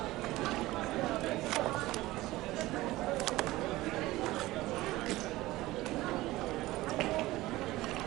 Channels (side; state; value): left; quieter; 18.1 dB